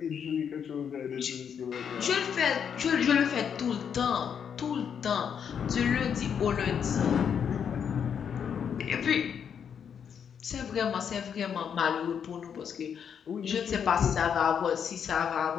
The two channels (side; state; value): right; quieter; 7.7 dB